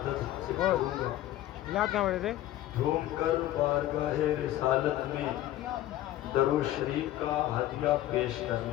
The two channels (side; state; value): right; quieter; 14.1 dB